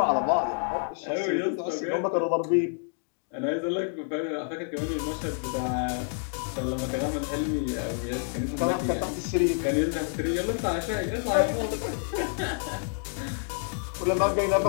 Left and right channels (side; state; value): right; silent; 59 dB below the other